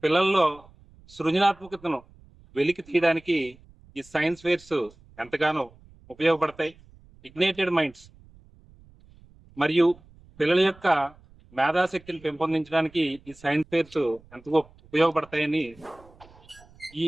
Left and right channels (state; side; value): noise; right; rumble, 26 dB below the sound